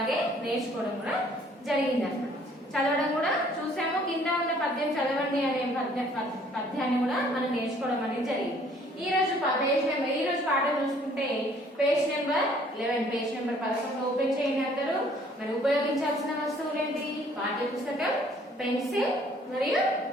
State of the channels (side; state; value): both; normal; correlation 0.59